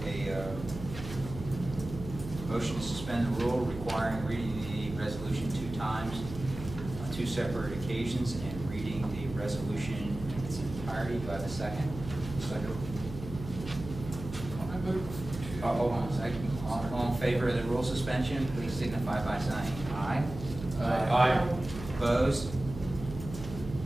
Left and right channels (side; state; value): right; noise; hum, 10 dB below the sound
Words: a motion to suspend the rule requiring reading the resolution 2 times on 2 separate occasions and reading the resolution in its entirety. Do I have a second? Second. I move to. Hold on a second. All in favor of the rule suspension, please signify by saying aye. Aye. Opposed?